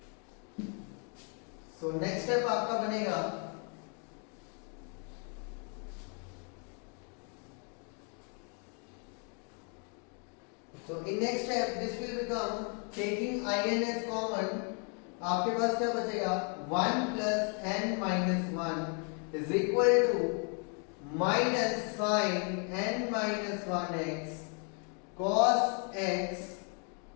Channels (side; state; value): right; quieter; 39.0 dB